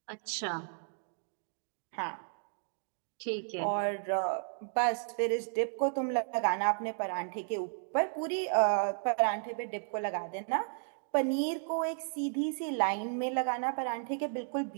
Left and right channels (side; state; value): left; silent; digital silence